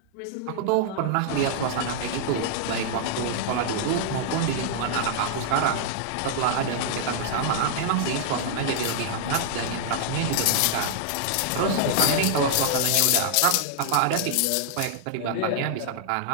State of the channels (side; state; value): both; different; correlation -0.01